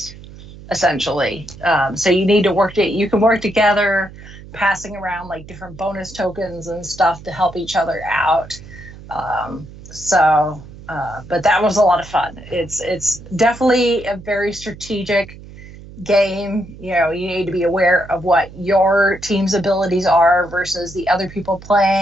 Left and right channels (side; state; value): right; noise; hum, 17 dB below the sound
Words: essentially. So you need to you can work together, passing around like different bonus tokens and stuff to help each other out. But that was a lot of fun. It's definitely a very strategic game, you need to be aware of what your team's abilities are versus the other people